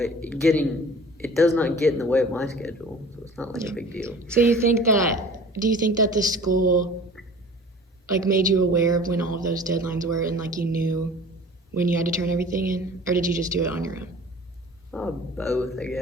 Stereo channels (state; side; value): normal; both; correlation 0.44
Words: It does not get in the way of my schedule, so it's not like a big deal. So do you think that the school like made you aware of when all of those deadlines were and like you knew when you had to turn everything in, or did you just do it on your own? Both, I